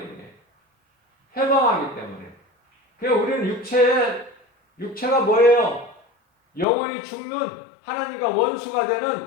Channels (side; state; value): right; drops out; at 6.7 s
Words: 해방하기 때문에. 그러니까 우리는 육체가 뭐예요? 영원히 죽는, 하나님과 원수가